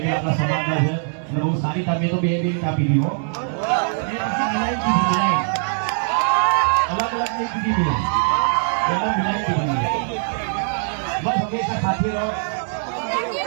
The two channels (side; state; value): left; silent; 60 dB below the other